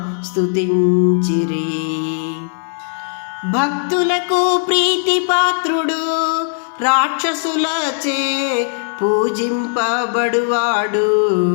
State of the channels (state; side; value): silent; right; digital silence